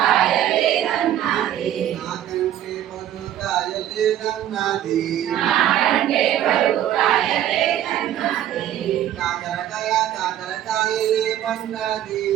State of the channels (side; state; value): left; quieter; 11.6 dB